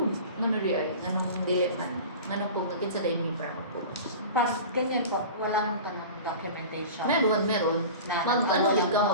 Ano rin ay, anong dili man, anong pag nakit sa daily para approve. Parang ganyan po, wala nang tanong documentation. Meron.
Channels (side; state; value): both; inverted; correlation -0.36